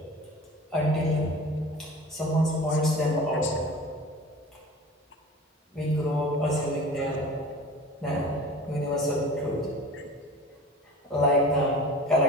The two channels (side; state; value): both; normal; correlation 0.39